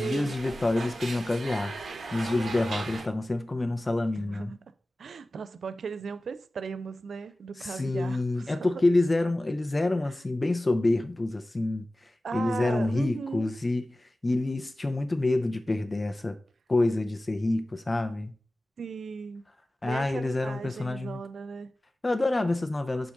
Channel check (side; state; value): both; normal; correlation 0.96